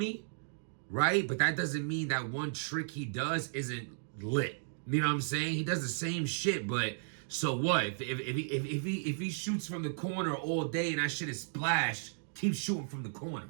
right? But that doesn't mean that one trick he does isn't lit. You know what I'm saying? He does the same shit, but so what? If he shoots from the corner all day and that shit is splash, keep shooting from the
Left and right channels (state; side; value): silent; left; digital silence